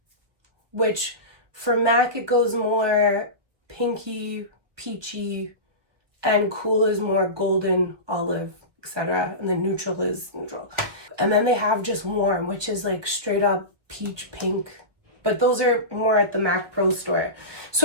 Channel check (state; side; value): late; left; 1.5 ms